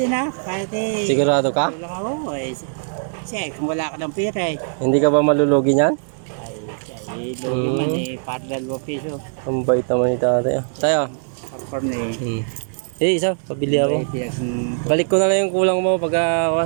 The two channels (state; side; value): silent; left; digital silence